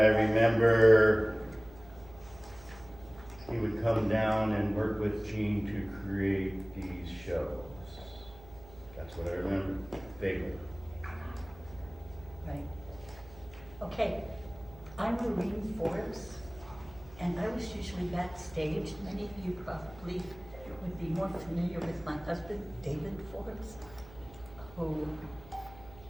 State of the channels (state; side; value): noise; right; hum, 20 dB below the sound